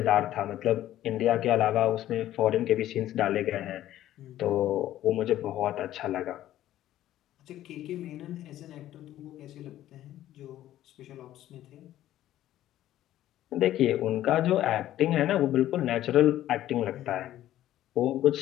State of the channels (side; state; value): right; quieter; 13.2 dB